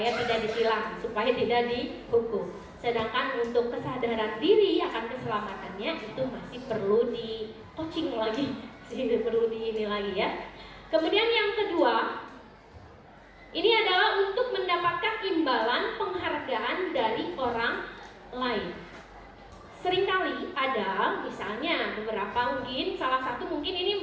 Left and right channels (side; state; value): both; identical; correlation 1.00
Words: tidak ditilang, supaya tidak dihukum. Sedangkan untuk kesadaran diri akan keselamatannya itu masih perlu di coaching lagi, perlu di ini lagi ya. Kemudian yang kedua, ini adalah untuk mendapatkan imbalan penghargaan dari orang lain. Seringkali ada, misalnya beberapa mungkin, salah satu mungkin